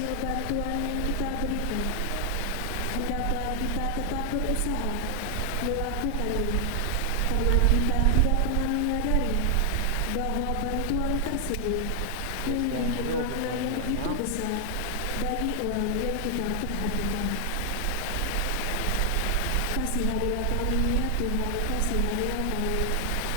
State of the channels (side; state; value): both; different; correlation 0.00